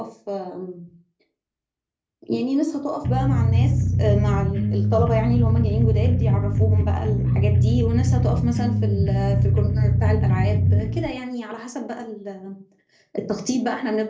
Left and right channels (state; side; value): identical; both; correlation 1.00